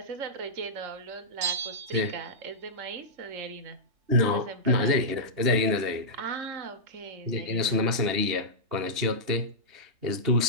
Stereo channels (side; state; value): left; late; 2.8 ms